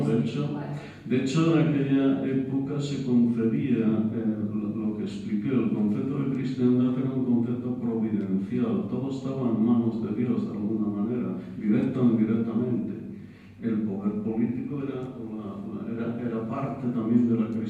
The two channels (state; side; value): identical; both; correlation 1.00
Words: de hecho en aquella época se concebía lo que expliqué, el concepto de cristiandad era un concepto providencial, todo estaba en manos de Dios de alguna manera, directa o indirectamente. El poder político era parte también de la